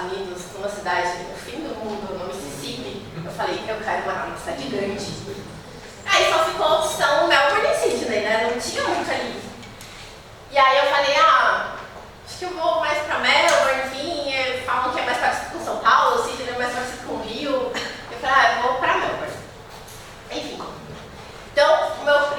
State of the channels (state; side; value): identical; both; correlation 1.00